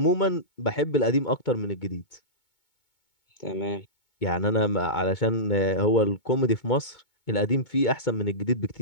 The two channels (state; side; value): late; right; 2.2 ms